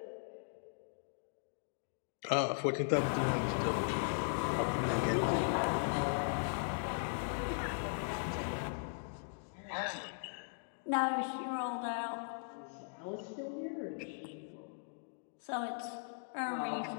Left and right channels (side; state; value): right; silent; digital silence